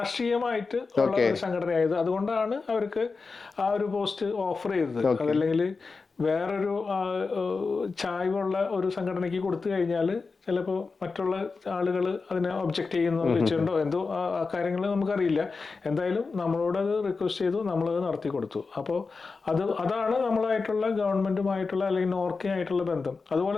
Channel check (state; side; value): quieter; right; 4.4 dB